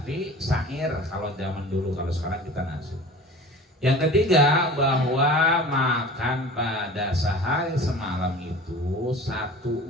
syair kalau zaman dulu, kalau sekarang kita nasi. Yang ketiga, bahwa makan pada sehari semalam itu 1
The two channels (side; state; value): both; normal; correlation 0.40